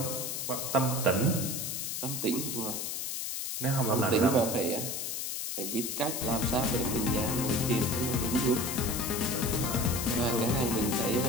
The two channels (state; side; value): noise; left; hiss, 3 dB below the sound